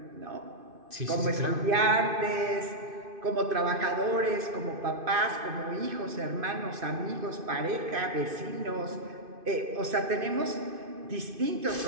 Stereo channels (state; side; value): late; left; 2.5 ms